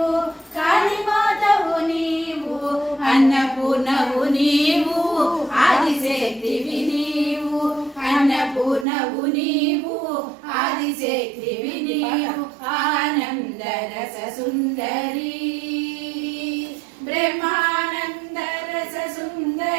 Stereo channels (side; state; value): left; drops out; at 8.8 s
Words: కాళీమాతవు నీవు, అన్నపూర్ణవు నీవు, ఆదిశక్తివి నీవు, అన్నపూర్ణవు నీవు, ఆదిశక్తివి నీవు, ఆనంద రస సుందరి, బ్రహ్మానంద రస